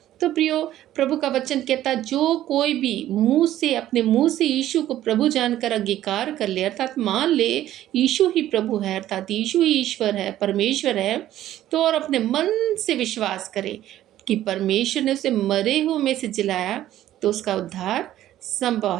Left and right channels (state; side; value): quieter; left; 13.1 dB